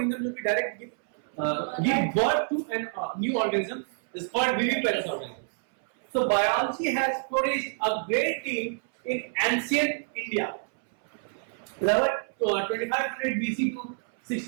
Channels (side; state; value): left; silent; 60 dB below the other